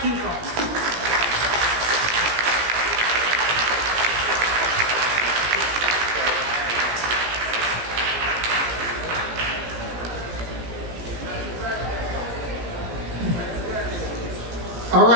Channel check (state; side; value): late; left; 17 ms